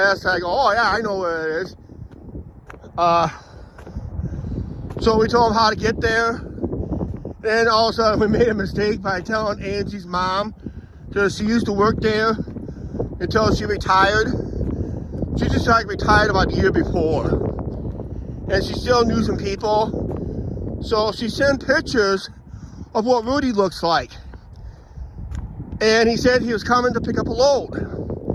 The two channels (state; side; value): identical; both; correlation 1.00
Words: I go, oh yeah, I know where it is. So we told him how to get there. Then all of a sudden we made a mistake by telling Angie's mom that she used to work there until she retired. She just retired about a year before. And she still knew some people. So she sent pictures of what Rudy looks like. And he said he was coming to pick up a load.